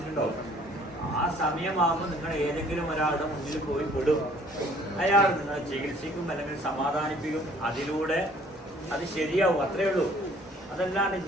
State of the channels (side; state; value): both; normal; correlation 0.57